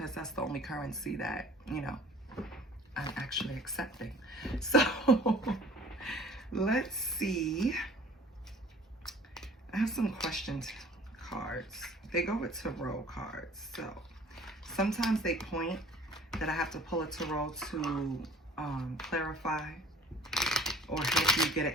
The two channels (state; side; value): normal; both; correlation 0.49